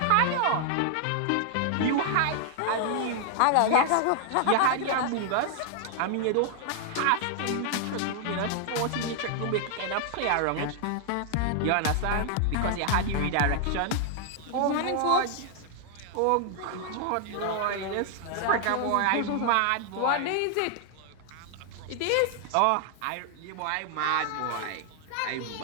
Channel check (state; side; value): different; both; correlation 0.00